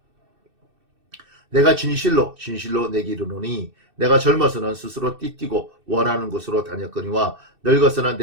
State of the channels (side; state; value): left; late; 2.6 ms